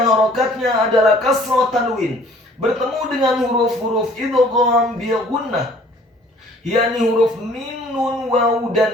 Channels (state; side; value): normal; both; correlation 0.55